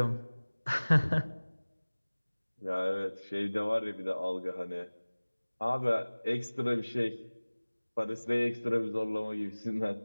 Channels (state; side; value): inverted; both; correlation -1.00